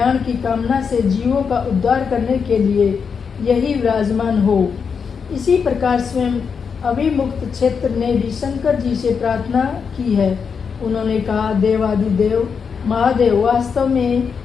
की कामना से जीवों का उद्धार करने के लिए यही विराजमान हो। इसी प्रकार स्वयं अभिमुक्त क्षेत्र ने भी शंकर जी से प्रार्थना की है। उन्होंने कहा, देवादिदेव महादेव, वास्तव में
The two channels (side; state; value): right; quieter; 6.1 dB